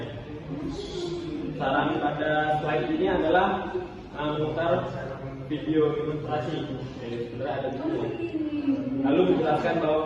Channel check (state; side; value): identical; both; correlation 1.00